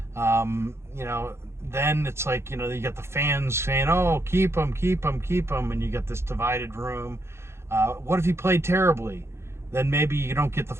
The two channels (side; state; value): left; late; 0.13 ms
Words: You know, then it's like, you know, you got the fans saying, oh, keep him, keep him, keep him, and you got this divided room. What if he played terribly? Then maybe you don't get the